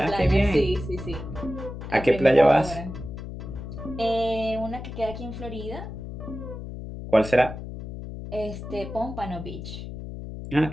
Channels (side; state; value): left; noise; hum, 9 dB below the sound